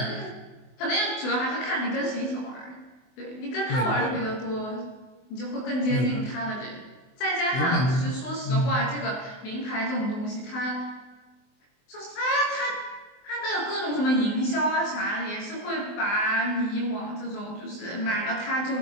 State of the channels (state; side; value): late; right; 24 ms